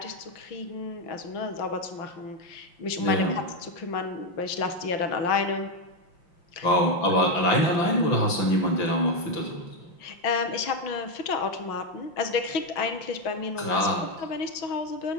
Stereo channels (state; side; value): late; right; 5.8 ms